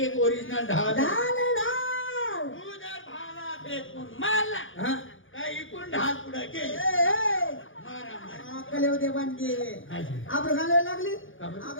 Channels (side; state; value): right; late; 0.57 ms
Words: ओरिजिनल ढाल आहे. डाल डाल तू जर भाला फेकून मारला हा काय इकडून ढाल पुढे गेली ए, ए. मारा मारा अक्कल येऊ दे बांधली काय झालं? आपण घालायला लागली का बरं?